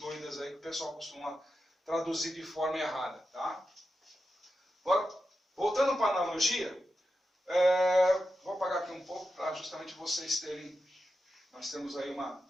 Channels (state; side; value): normal; both; correlation 0.89